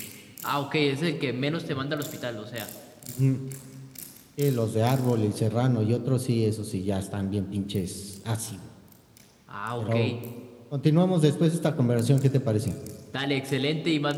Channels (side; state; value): both; identical; correlation 1.00